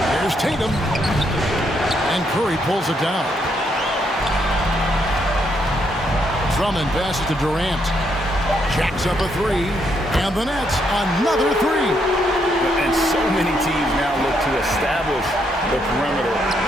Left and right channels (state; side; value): normal; both; correlation 0.75